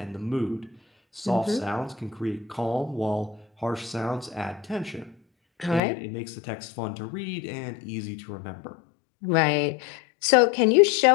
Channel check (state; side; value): drops out; right; at 5.8 s